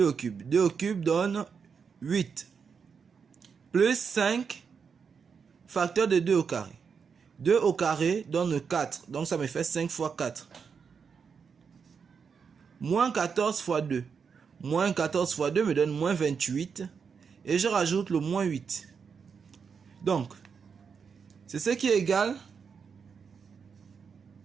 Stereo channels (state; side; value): quieter; left; 6.1 dB